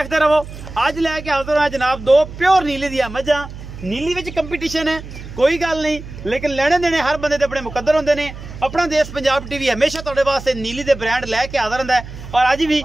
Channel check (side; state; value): right; noise; hum, 13 dB below the sound